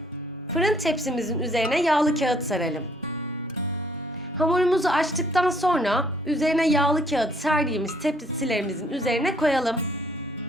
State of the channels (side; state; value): both; normal; correlation 0.64